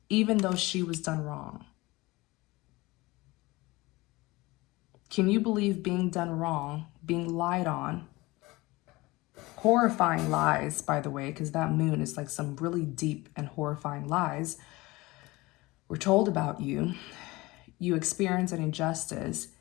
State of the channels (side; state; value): right; quieter; 21.3 dB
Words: even though she was done wrong. Can you believe being done wrong, being lied on? Horrifying lies, by the way, because that moon is like some really deep and horrifying lies were told about you. You experience an injustice,